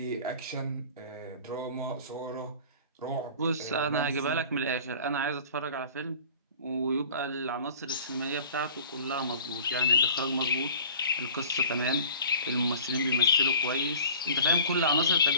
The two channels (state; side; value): inverted; both; correlation -0.44